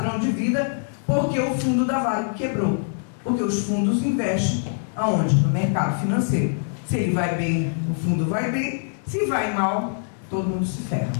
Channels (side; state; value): right; silent; digital silence